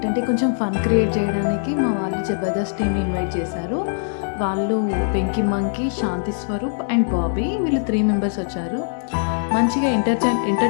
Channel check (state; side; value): silent; right; digital silence